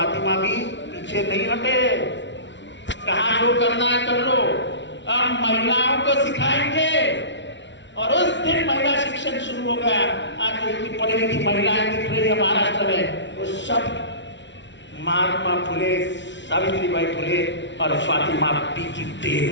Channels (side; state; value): right; late; 0.53 ms